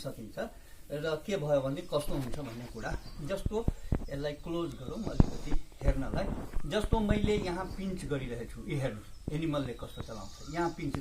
र के भयो भने कस्तो हुन्छ भन्ने कुरा जस्तो यसलाई क्लोज गरौँ अलिकति हेर्नलाई। जस्तो मैले यहाँ पिन्च गरिरहेको छु, यो हेर्नु एनिमलले कस्तो चलाउँछ। यहाँ पिन्च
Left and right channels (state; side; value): identical; both; correlation 1.00